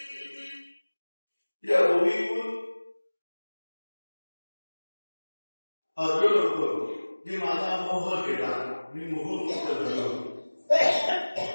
या होळीतून अर्जुन होतो की माझा मोह गेला, मी मोहमुक्त झालो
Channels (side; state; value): both; inverted; correlation -1.00